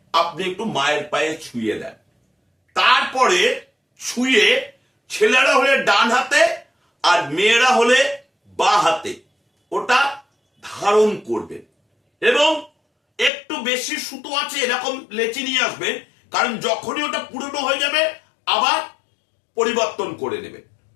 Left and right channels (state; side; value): drops out; right; at 13.3 s